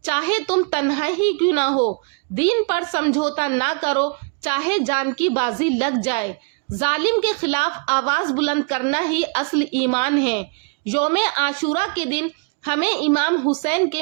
چاہے تم تنہا ہی کیوں نہ ہو، دین پر سمجھوتا نہ کرو، چاہے جان کی بازی لگ جائے۔ ظالم کے خلاف آواز بلند کرنا ہی اصل ایمان ہے۔ یوم عاشورہ کے دن ہمیں امام حسین کے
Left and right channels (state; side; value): quieter; left; 36.7 dB